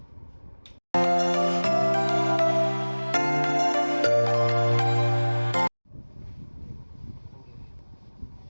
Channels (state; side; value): inverted; both; correlation -1.00